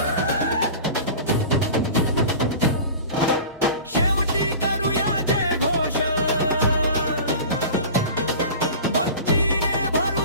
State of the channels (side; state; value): both; inverted; correlation -0.36